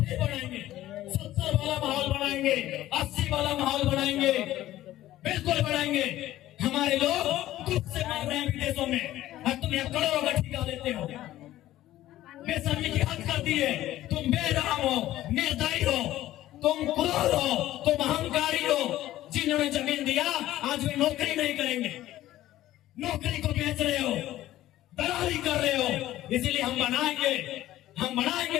बनाएंगे, 70 वाला माहौल बनाएंगे, 80 वाला माहौल बनाएंगे, बिल्कुल बनाएंगे। हमारे लोग दुख से मर रहे हैं विदेशों में, और तुम यहाँ करोड़ों का ठेका लेते हो। बेशर्मी की हद कर दिए। तुम बेरहम हो, निर्दयी हो, तुम क्रूर हो, तुम अहंकारी हो। जिन्होंने जमीन दिया आज वे नौकरी नहीं करेंगे, नौकरी को बेच रहे हो, दलाली कर रहे हो। इसीलिए हम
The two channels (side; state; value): right; quieter; 14.5 dB